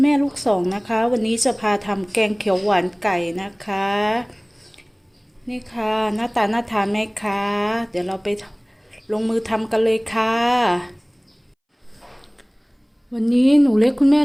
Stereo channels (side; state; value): both; identical; correlation 1.00